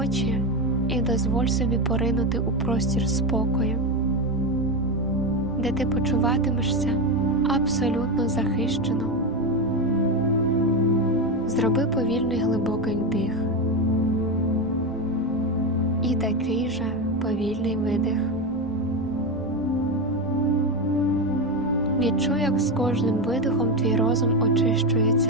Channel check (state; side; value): noise; left; rumble, 18 dB below the sound